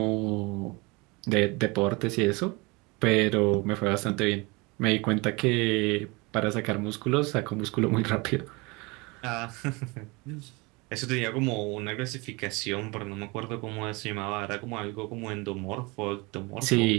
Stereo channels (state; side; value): quieter; left; 26.2 dB